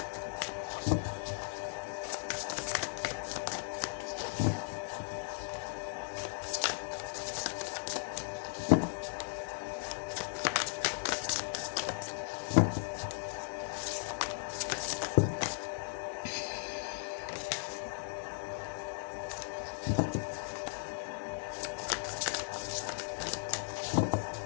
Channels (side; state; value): right; silent; digital silence